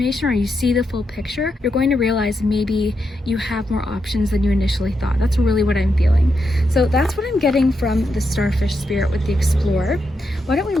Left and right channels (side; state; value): both; normal; correlation 0.84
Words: or you see the full picture, you're going to realize maybe you have more options than you initially thought. That's really what I'm feeling. So that's what I'm getting from the starfish spirit with the explorer. Why don't we